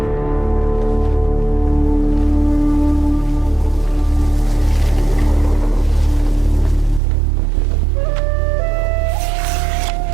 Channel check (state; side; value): drops out; left; at 7.0 s